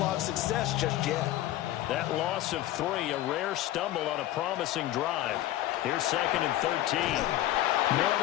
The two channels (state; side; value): quieter; right; 14.3 dB